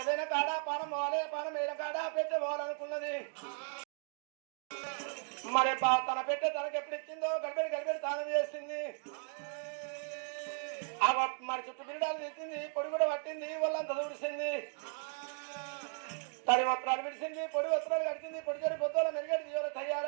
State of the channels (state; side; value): silent; left; 54 dB below the other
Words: కాడ పానం పోవాలి పానం వేయన కాడ పెద్ద పోవాలనుకున్నది మరి తన పెట్టె తనకు ఎప్పుడు ఇచ్చిందో గడిపెడి దానం చేసింది మరి చుట్టూ బిడ్డలు తెచ్చింది పొడి కూడా పట్టింది వాళ్ళంతా దూడిసింది తడి వస్త్రాలు విడిచింది పొడి వస్త్రాలు కడిచింది పొడి చెడి పొద్దుల మెరుగడి తీయాలి